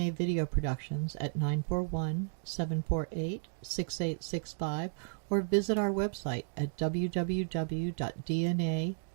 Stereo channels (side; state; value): left; silent; digital silence